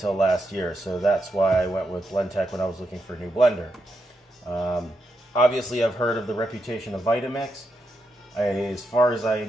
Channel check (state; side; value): normal; both; correlation 0.84